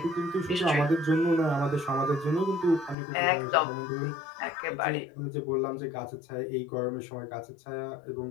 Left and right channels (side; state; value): right; drops out; at 3.0 s